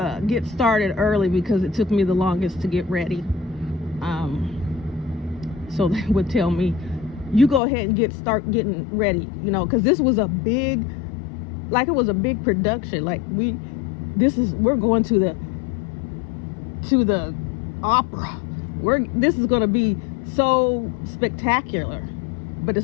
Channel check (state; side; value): drops out; right; at 7.6 s